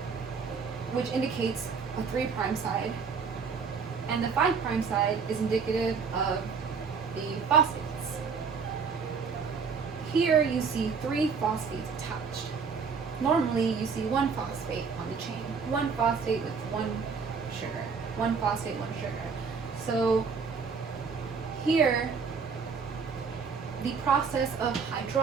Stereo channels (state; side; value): quieter; left; 5.6 dB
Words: which indicates a 3' side, and the 5' side is indicative of the phosphates. Here you see 3 phosphates attached. Normally you see 1 phosphate on the chain, 1 phosphate with 1 sugar, 1 phosphate, 1 sugar. So here, the process of